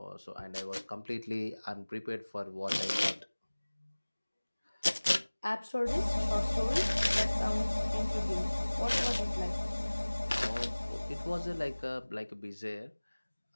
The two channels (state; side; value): inverted; both; correlation -1.00